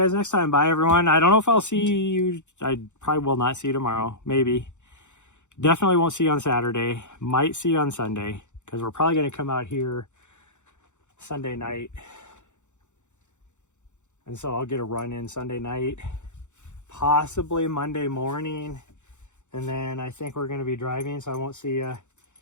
next time. Bye, everyone. I don't know if I'll see you. I probably will not see you tomorrow. Maybe. Definitely won't see you on Saturday. Might see you on Sunday, because we're probably going to come out here Sunday night. And so I'll get a run in Sunday night, possibly Monday morning. And then I think we're going to be driving, so I won't see you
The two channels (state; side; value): late; right; 0.84 ms